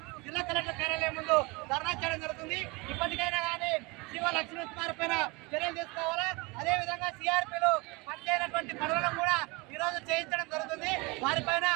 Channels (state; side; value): quieter; left; 26.3 dB